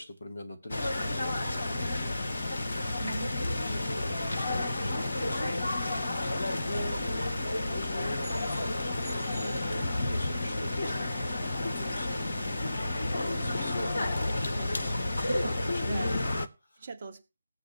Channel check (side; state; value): both; inverted; correlation -0.91